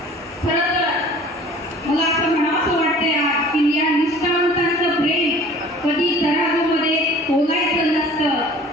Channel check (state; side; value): normal; both; correlation 0.47